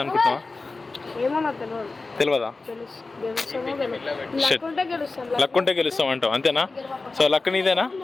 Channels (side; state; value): right; quieter; 3.6 dB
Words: అనుకుంటున్నావా? తెలియదా? లక్ ఉంటే గెలుస్తాం అంటావు, అంతేనా? సో లక్ నీదేనా?